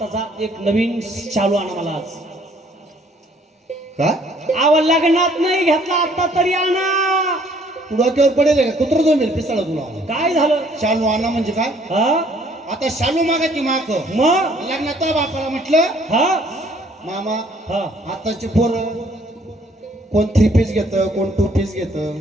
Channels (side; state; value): both; normal; correlation 0.61